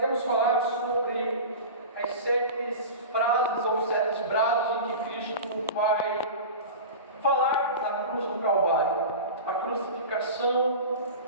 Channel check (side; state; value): both; inverted; correlation -0.30